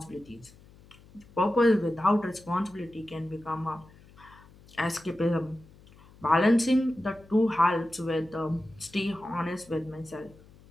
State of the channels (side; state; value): left; noise; hum, 25 dB below the sound